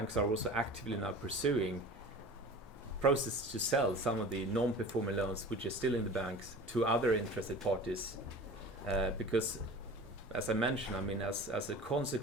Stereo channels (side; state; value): both; normal; correlation 0.38